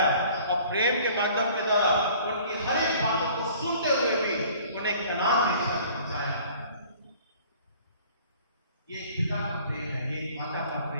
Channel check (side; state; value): both; inverted; correlation -0.51